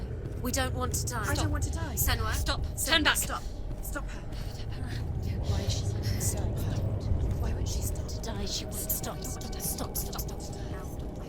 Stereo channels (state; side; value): identical; both; correlation 1.00